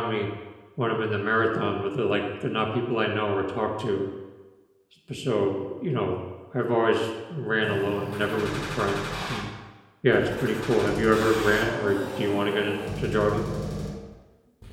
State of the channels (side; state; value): both; identical; correlation 1.00